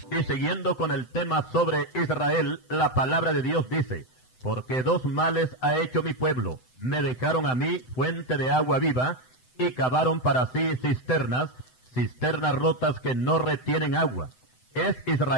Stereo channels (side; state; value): right; late; 7.9 ms